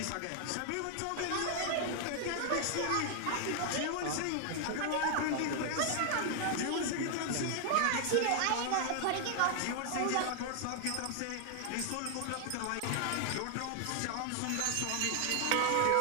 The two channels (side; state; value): both; different; correlation 0.00